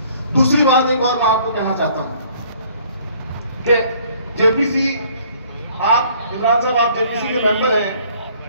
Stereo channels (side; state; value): both; inverted; correlation -0.59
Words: दूसरी बात एक और मैं आपको कहना चाहता हूं कि जेपीसी, आप इमरान साहब, आप जेपीसी के मेंबर हैं,